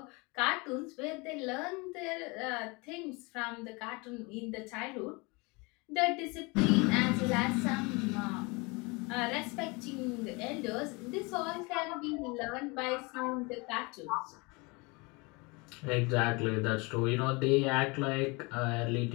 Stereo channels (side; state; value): right; quieter; 27.4 dB